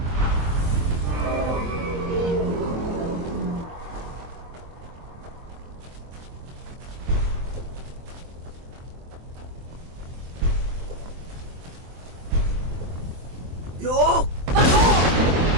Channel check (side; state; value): left; late; 23 ms